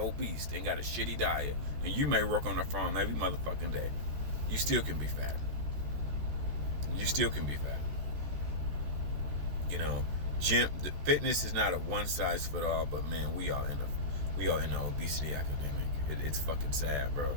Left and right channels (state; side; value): late; left; 14 ms